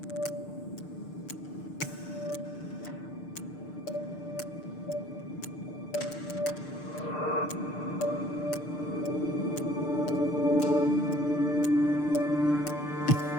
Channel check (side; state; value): right; late; 6.7 ms